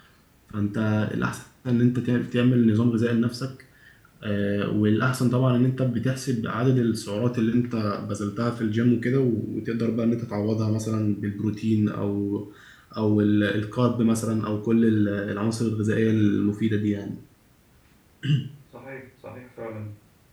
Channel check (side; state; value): both; identical; correlation 1.00